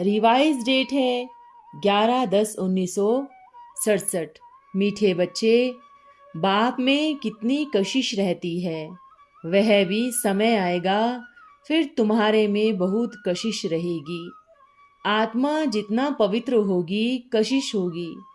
डेट है 11/10/1967। मीठे बच्चे, बाप में कितनी कशिश रहती है, वह भी समय आएगा फिर तुम्हारे में बहुत कशिश रहेगी। आत्मा जितना पवित्र होगी कशिश होगी।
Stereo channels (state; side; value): identical; both; correlation 1.00